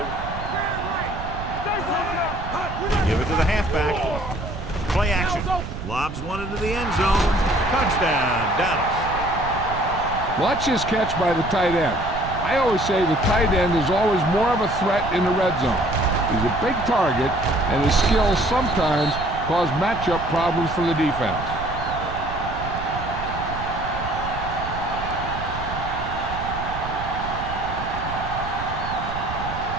Give it to the halfback. Play action. Lobs one into the end zone. Touchdown, Dallas. Watch this catch by the tight end. I always say the tight end is always more of a threat in the red zone. He's a big target, and his skills sometimes cause matchup problems for the defense.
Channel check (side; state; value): right; noise; rumble, 9 dB below the sound